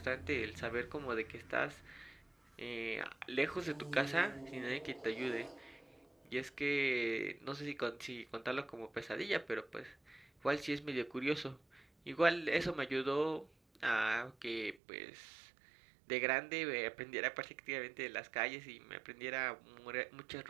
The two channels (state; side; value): drops out; left; at 14.8 s